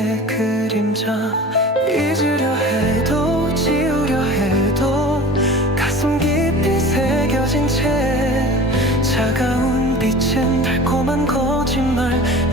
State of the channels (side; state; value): both; normal; correlation 0.39